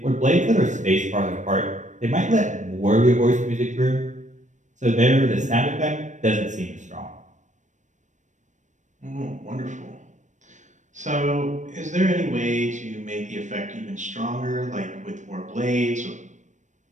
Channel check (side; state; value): left; late; 0.35 ms